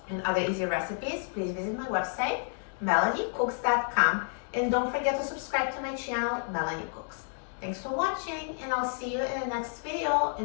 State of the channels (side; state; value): right; silent; 58 dB below the other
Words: and other easy recipes, please visit my website, MelanieCooks.com, and don't forget to subscribe to my channel, Melanie Cooks. Thanks for watching, and I'll see you in the next video.